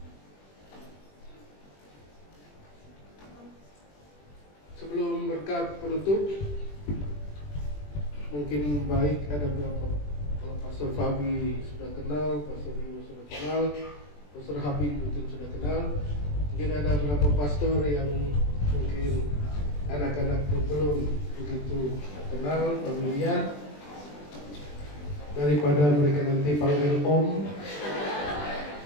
Sebelum berkat penutup, mungkin baik ada beberapa, kalau Pastor Fabi sudah kenal, Pastor Rio sudah kenal, Pastor Habib mungkin sudah kenal, mungkin ada beberapa pastor yang mungkin anak-anak belum begitu kenal, familiar. Daripada mereka nanti panggil Om,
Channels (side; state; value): right; late; 20 ms